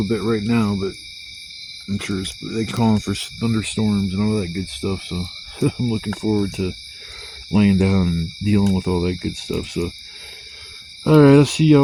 bit right now, but I'm sure they're calling for thunderstorms and all that good stuff. So I'm looking forward to laying down and dealing with all that good stuff. So alright, I'll see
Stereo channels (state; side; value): identical; both; correlation 1.00